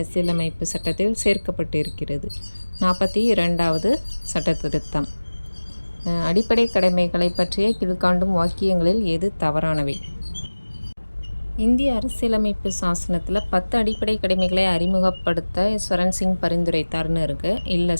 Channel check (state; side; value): inverted; both; correlation -1.00